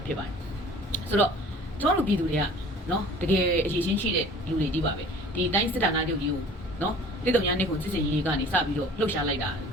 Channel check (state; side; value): normal; both; correlation 0.47